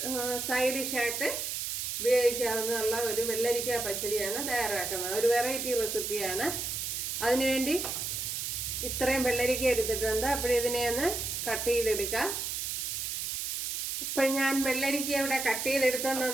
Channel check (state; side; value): noise; right; hiss, 2 dB below the sound